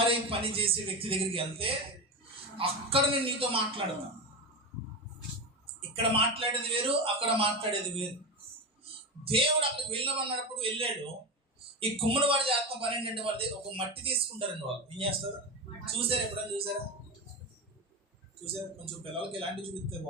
పని చేసే వ్యక్తి దగ్గరికి వెళ్తే అక్కడ నేను నీతో మాట్లాడతాను. ఇక్కడ మాట్లాడేది వేరు, అక్కడ మాట్లాడేది వేరు. దేవుడు అక్కడికి వెళ్ళమన్నప్పుడు వెళ్ళాడు. ఈ కుమ్మరి వాడు చేస్తున్న పని ఏంటంటే, వాళ్ళ దగ్గర ఒక మట్టి తీసుకుంటారండి. వాళ్ళు ఏం చేస్తారు చూసారా? ఎప్పుడైనా చూసారా? కొంచెం పిల్లలకి ఎలాంటివి చూపిస్తే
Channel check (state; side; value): normal; both; correlation 0.19